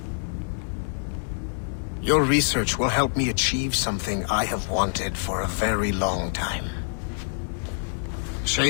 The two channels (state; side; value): silent; right; digital silence